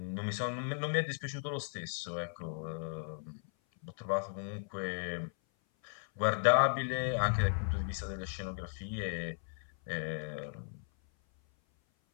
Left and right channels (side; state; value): right; silent; 54 dB below the other